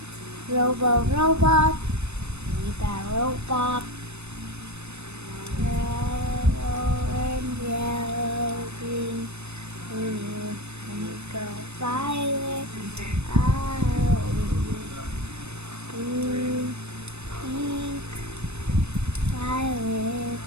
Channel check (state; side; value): late; left; 0.81 ms